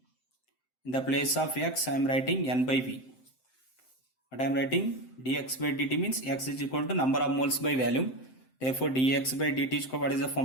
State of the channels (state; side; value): late; right; 7.7 ms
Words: In the place of x I am writing N by V. What I am writing? dx by dt means x is equal to number of moles by volume. Therefore dx by dt is, what is the